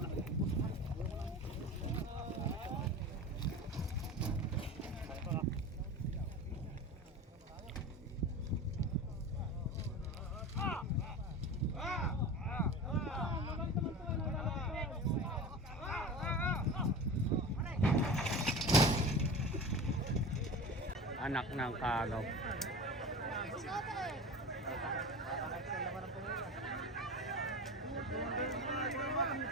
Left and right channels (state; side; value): normal; both; correlation 0.31